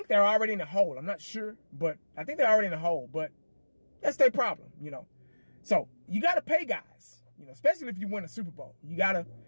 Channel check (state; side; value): inverted; both; correlation -1.00